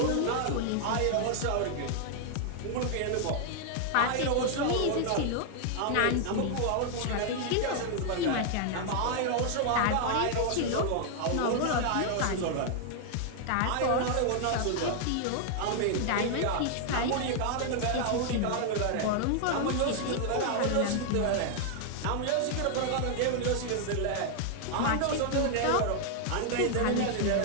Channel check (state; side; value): different; both; correlation 0.00